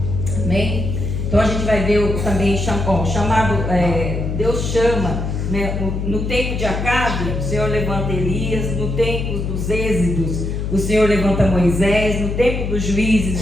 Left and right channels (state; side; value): noise; left; hum, 3 dB below the sound